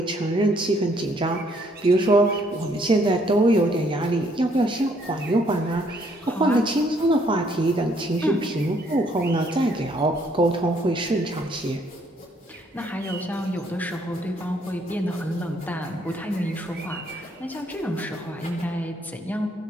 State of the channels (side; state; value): both; normal; correlation 0.67